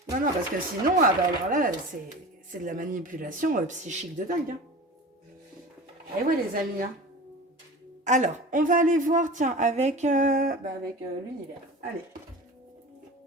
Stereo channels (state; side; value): normal; both; correlation 0.35